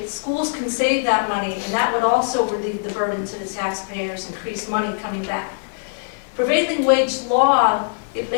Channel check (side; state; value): right; silent; 59 dB below the other